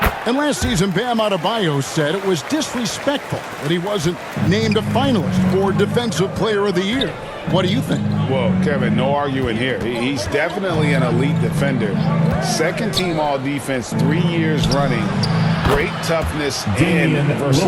And last season, Bam Adebayo said it was disrespectful that he wasn't named a finalist for Defensive Player of the Year. What do you think? Well, Kevin, no arguing here. He's definitely an elite defender. Second team all defense 3 years running. Great toughness and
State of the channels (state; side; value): identical; both; correlation 1.00